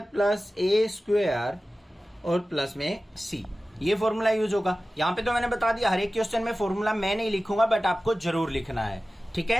plus a² और प्लस में c। ये फॉर्मूला यूज होगा। यहाँ पे तो मैंने बता दिया, हर एक क्वेश्चन में फॉर्मूला मैं नहीं लिखूंगा, बट आपको जरूर लिखना है, ठीक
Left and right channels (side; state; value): both; normal; correlation 0.96